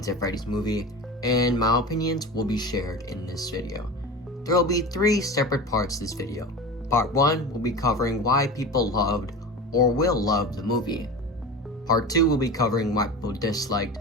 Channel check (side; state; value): both; normal; correlation 0.30